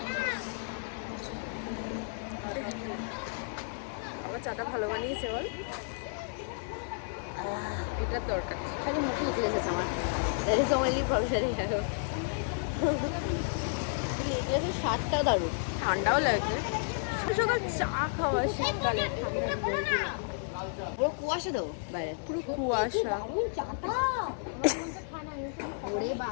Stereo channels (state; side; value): silent; right; 56 dB below the other